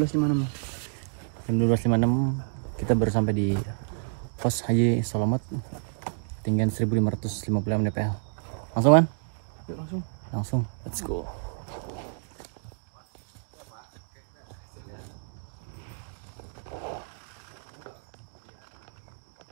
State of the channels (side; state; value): left; silent; digital silence